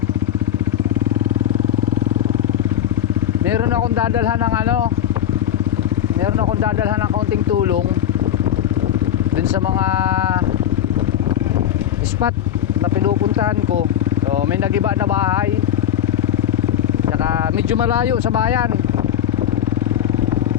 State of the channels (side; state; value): right; quieter; 10.7 dB